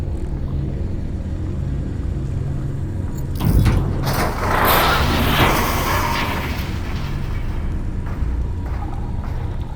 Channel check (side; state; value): both; identical; correlation 1.00